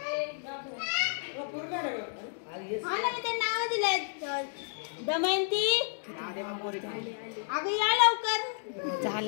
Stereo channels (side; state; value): right; silent; digital silence